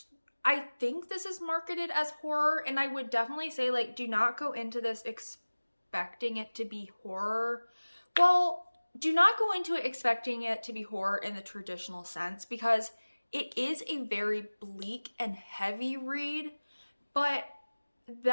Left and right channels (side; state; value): both; inverted; correlation -1.00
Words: I think this is marketed as horror, and I would definitely say, like, do not go into this expecting it to be horror. Well, do not go into it expecting it to be horror in the traditional sense, because it is a very bleak and heavy read, but